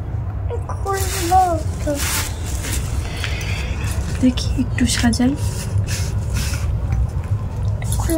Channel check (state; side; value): identical; both; correlation 1.00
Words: দেখি একটু সাজাই।